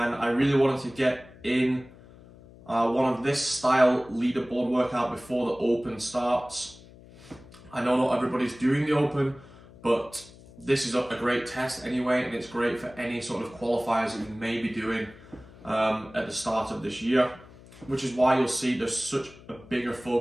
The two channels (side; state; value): left; noise; hum, 21 dB below the sound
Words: I really wanted to get in one of this style leaderboard workout before the Open starts. I know not everybody's doing the Open, but this is a great test anyway, and it's great for any sort of qualifiers that you may be doing at the start of this year, which is why you'll see there's such a bigger